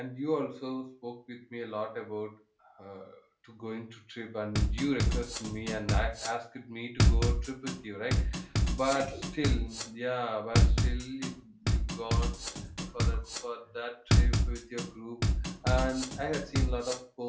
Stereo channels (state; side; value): identical; both; correlation 1.00